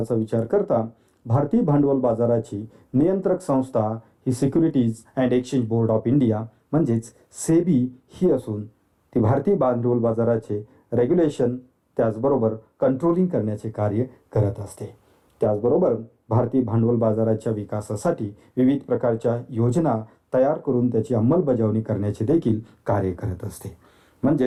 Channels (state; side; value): identical; both; correlation 1.00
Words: विचार करता भारतीय भांडवल बाजाराची नियंत्रक संस्था ही securities and exchange board of India म्हणजेच सेबी ही असून ती भारतीय भांडवल बाजाराचे रेग्युलेशन त्याचबरोबर कंट्रोलिंग करण्याचे कार्य करत असते. त्याचबरोबर भारतीय भांडवल बाजाराच्या विकासासाठी विविध प्रकारच्या योजना तयार करून त्याची अंमलबजावणी करण्याचे देखील कार्य करत असते.